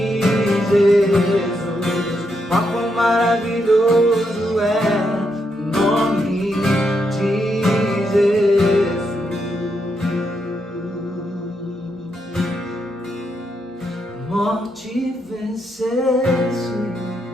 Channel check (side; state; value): both; normal; correlation 0.80